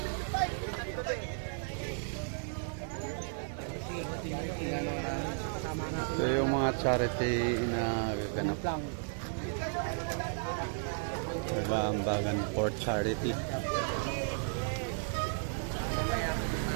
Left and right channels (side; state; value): left; silent; digital silence